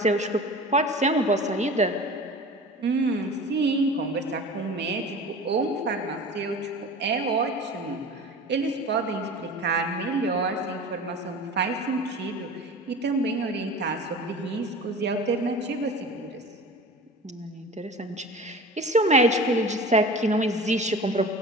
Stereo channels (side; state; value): both; normal; correlation 0.37